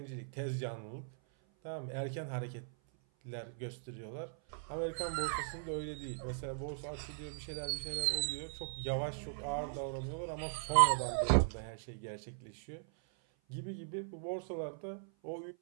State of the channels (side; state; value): left; silent; 52 dB below the other